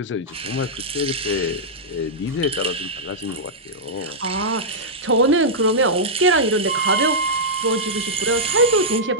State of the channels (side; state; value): both; normal; correlation -0.09